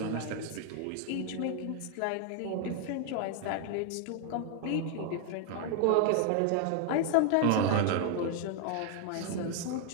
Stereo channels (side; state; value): both; different; correlation 0.00